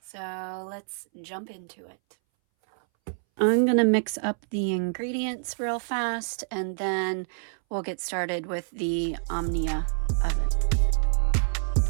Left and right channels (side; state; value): left; silent; 60 dB below the other